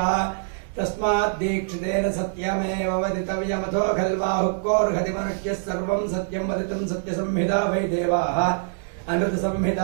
तस्मात् दीक्षितेन सत्यमेव वदितव्यमथो खल्वाहुक्कोर्हति मनुष्यः सर्वं सत्यं वदितुं सत्यसंहिता वै देवाः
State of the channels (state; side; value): silent; left; digital silence